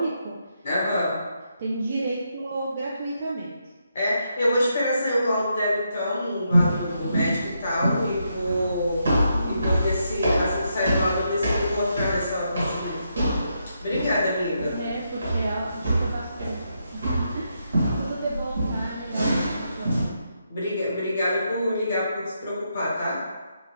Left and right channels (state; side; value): inverted; both; correlation -0.81